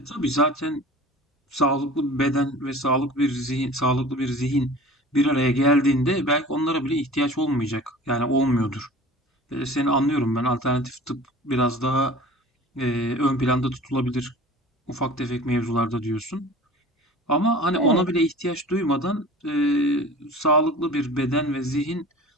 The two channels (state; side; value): normal; both; correlation 0.41